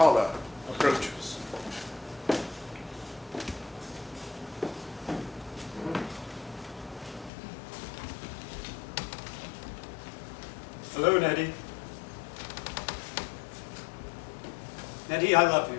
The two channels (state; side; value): drops out; right; at 7.3 s